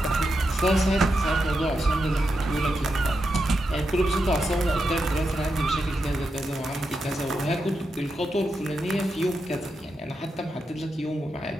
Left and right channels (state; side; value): normal; both; correlation 0.86